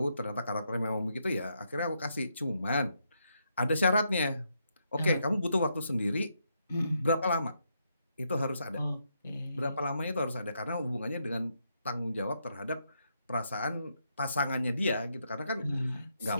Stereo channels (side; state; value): both; inverted; correlation -0.79